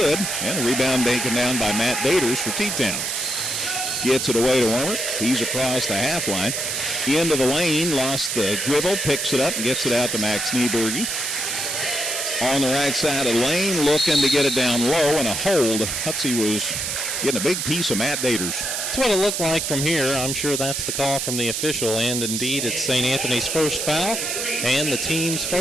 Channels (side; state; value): right; noise; hiss, 2 dB below the sound